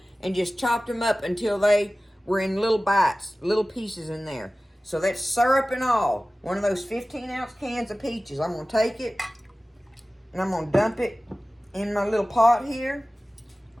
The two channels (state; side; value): normal; both; correlation 0.97